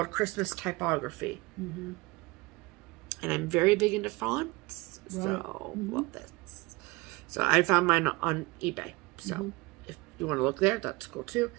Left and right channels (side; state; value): left; quieter; 23.4 dB